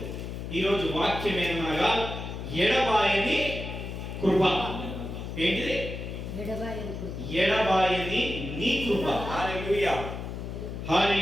ఈ రోజు వాక్యం ఏమనగా ఎడబాయని కృప. ఏంటిది? ఎడబాయని నీ కృప. హల్లెలూయా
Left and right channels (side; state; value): left; noise; hum, 7 dB below the sound